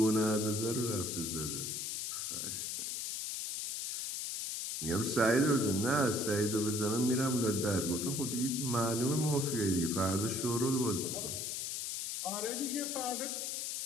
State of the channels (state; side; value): noise; left; hiss, 3 dB below the sound